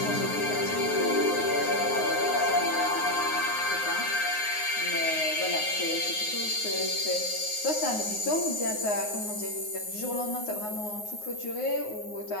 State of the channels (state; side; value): late; right; 9.5 ms